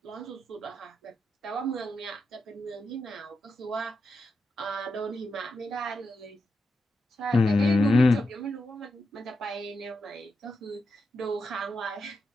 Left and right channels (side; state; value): both; normal; correlation 0.87